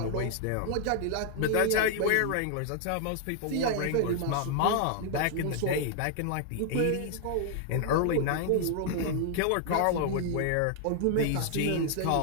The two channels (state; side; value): different; both; correlation 0.00